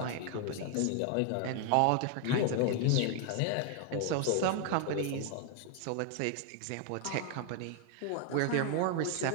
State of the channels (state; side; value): different; both; correlation 0.00